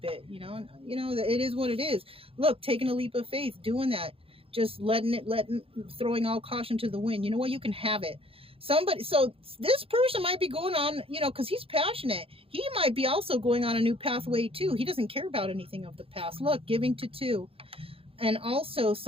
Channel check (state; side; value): late; left; 0.27 ms